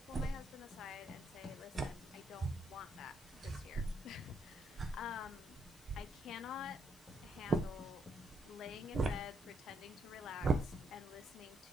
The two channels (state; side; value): noise; left; hiss, 20 dB below the sound